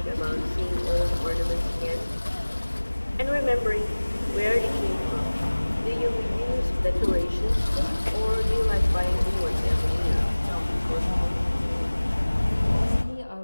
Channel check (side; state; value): both; inverted; correlation -1.00